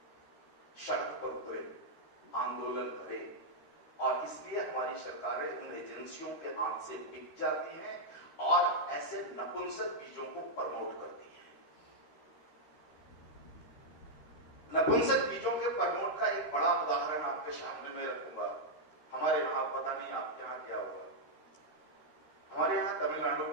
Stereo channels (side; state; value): right; late; 13 ms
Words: सड़क पर उतरे, आंदोलन करे, और इसलिए हमारी सरकारें उन एजेंसियों के हाथ से बिक जाती हैं और ऐसे नपुंसक बीजों को प्रमोट करती हैं। नपुंसक बीजों के प्रमोट का एक बड़ा उदाहरण आपके सामने में रखूंगा। हमारे यहां, पता नहीं आपके यहां क्या हुआ, हमारे यहां तमिलनाडु